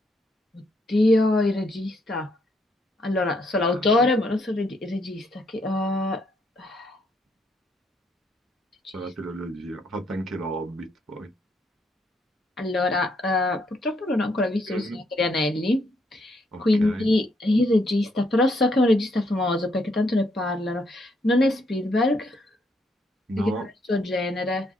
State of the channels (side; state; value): both; normal; correlation 0.73